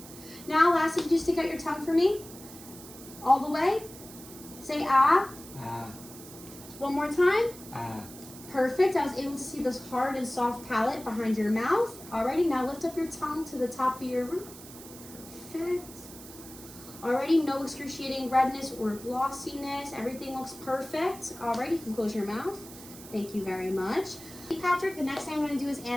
Now, lastly, just stick out your tongue for me. All the way. Say ah. Ah. One more time. Ah. Perfect. I was able to see this hard and soft palate behind your mouth. Alrighty, now lift up your tongue to the top of your roof. Perfect. Alrighty, no excruciating redness or glossiness. Everything looks perfect. Alrighty, you can close your mouth. Thank you very much. Patrick, the next thing I'm going to do is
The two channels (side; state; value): right; noise; hiss, 16 dB below the sound